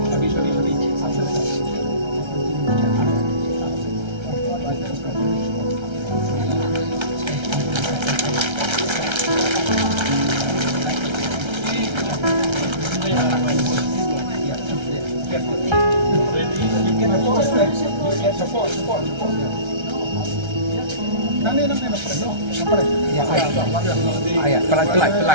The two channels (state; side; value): late; left; 1.3 ms